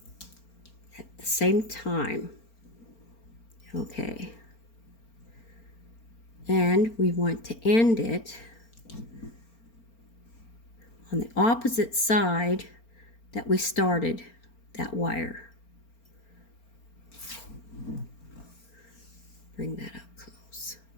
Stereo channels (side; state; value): right; late; 4.4 ms